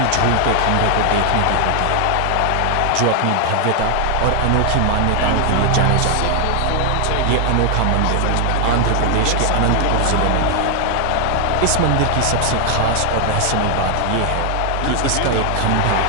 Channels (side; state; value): both; different; correlation 0.00